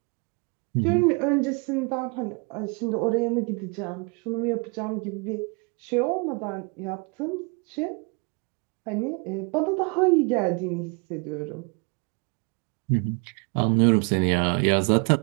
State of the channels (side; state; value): left; quieter; 33.1 dB